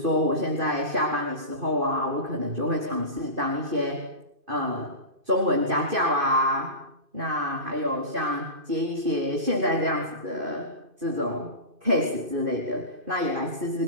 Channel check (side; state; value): left; late; 2.6 ms